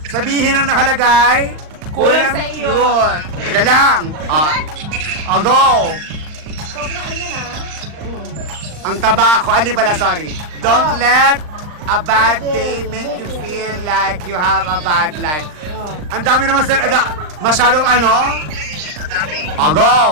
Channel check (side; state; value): left; late; 39 ms